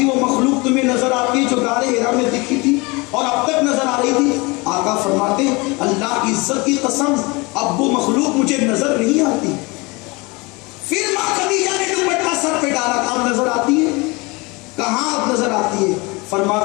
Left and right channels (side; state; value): right; quieter; 26.0 dB